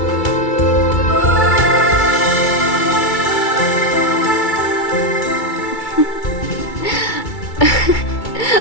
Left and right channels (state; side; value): late; right; 2.3 ms